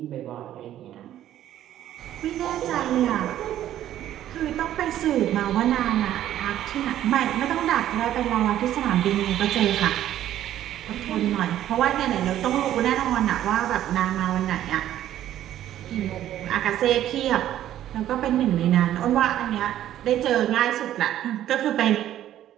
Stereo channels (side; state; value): left; quieter; 12.2 dB